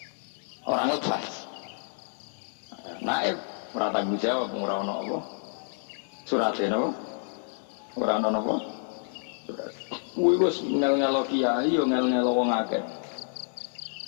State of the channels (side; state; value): right; silent; 59 dB below the other